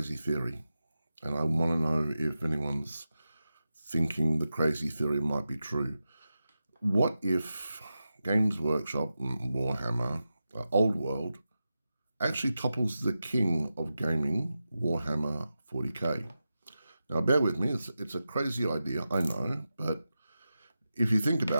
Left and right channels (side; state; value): both; inverted; correlation -0.91